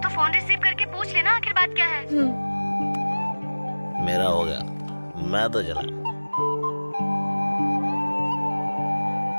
तो फोन रिसीव करके पूछ लेना आखिर बात क्या है। मेरा हो गया, मैं तो चला।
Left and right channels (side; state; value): both; inverted; correlation -1.00